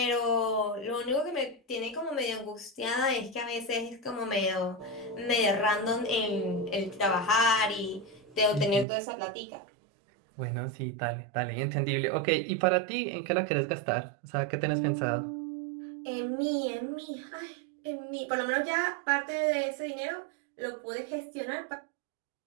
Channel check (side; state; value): left; drops out; at 8.8 s